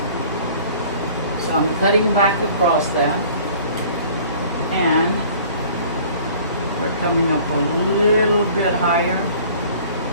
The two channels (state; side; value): inverted; both; correlation -0.50